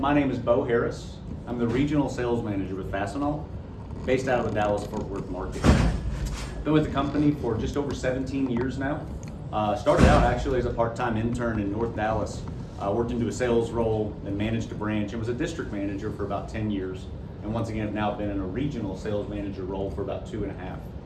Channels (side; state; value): both; identical; correlation 1.00